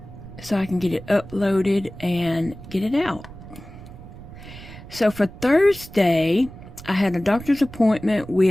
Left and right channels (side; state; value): right; noise; rumble, 16 dB below the sound